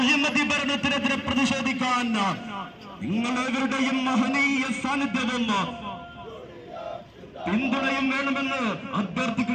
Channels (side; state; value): both; identical; correlation 1.00